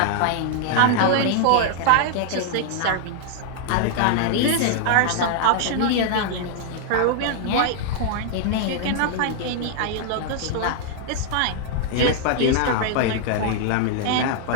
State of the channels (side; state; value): both; different; correlation 0.00